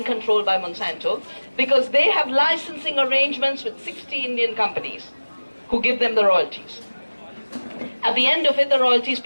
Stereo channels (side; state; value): both; inverted; correlation -1.00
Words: controlled by Monsanto, because they have licensing arrangements with 60 Indian companies who give them the royalties. At the end of it, the royalty is